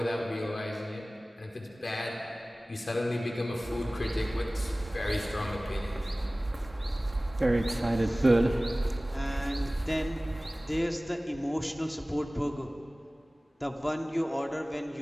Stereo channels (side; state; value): both; normal; correlation 0.98